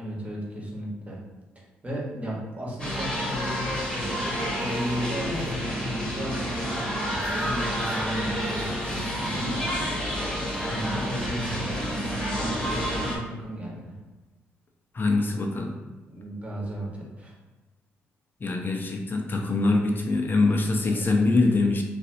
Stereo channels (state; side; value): normal; both; correlation 0.78